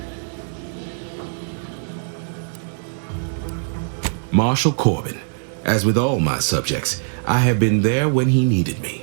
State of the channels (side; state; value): left; silent; digital silence